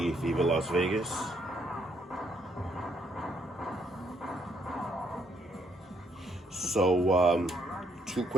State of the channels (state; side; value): normal; both; correlation 0.71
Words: Viva Las Vegas. So, two